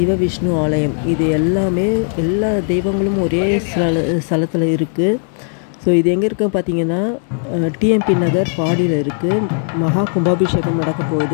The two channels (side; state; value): right; silent; 55 dB below the other